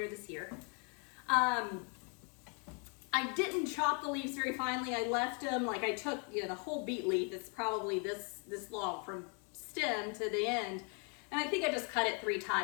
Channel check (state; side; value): quieter; right; 37.9 dB